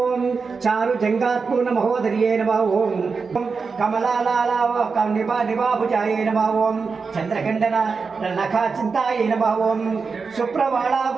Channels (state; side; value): quieter; left; 4.9 dB